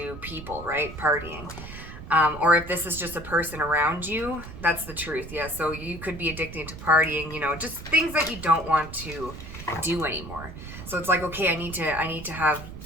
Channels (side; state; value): right; noise; rumble, 12 dB below the sound